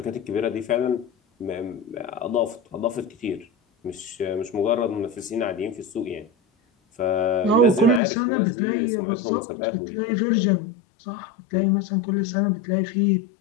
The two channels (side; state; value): right; drops out; at 8.0 s